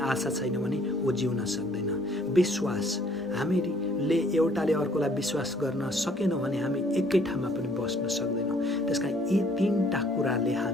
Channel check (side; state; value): both; normal; correlation 0.61